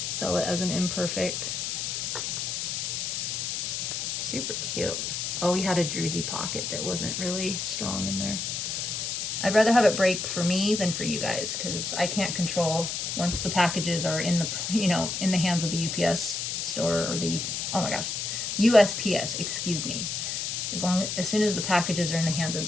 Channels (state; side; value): noise; left; hiss, 2 dB below the sound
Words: Sell it as an imperfect. Super cute. Oh, he had a druzy pocket that wasn't really strong in there. I'd rather have it break for me than for you guys because I can't control once the packages are in the, you know, in the hands of the UPS store or the, oh my gosh, USPS, excuse me. As soon as the packages are in the hands of